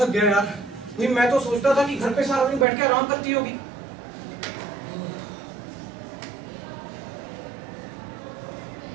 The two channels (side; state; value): left; drops out; at 2.7 s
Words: थक गया यार। भाई मैं तो सोचता था कि घर पे सारा दिन बैठ के आराम करती होगी।